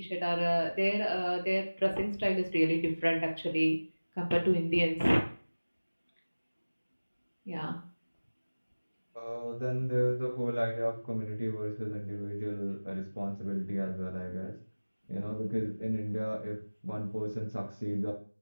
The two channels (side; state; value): both; inverted; correlation -1.00